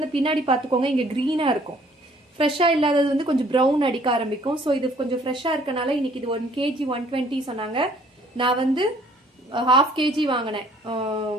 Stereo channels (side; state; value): both; normal; correlation 0.59